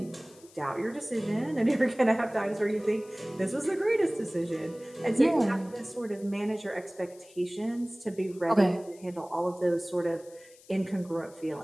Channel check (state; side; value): noise; left; hiss, 25 dB below the sound